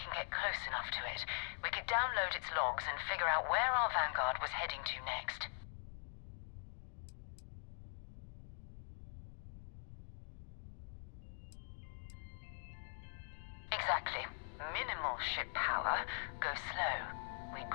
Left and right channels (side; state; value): right; silent; digital silence